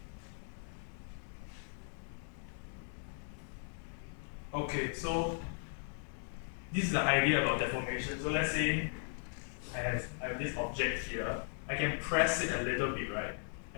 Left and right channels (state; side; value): silent; right; 53 dB below the other